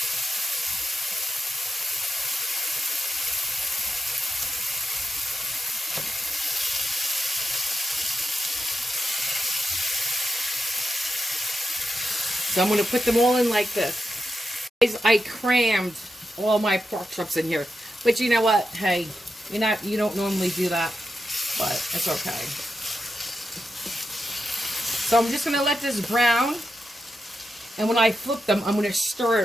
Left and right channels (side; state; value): both; normal; correlation 0.88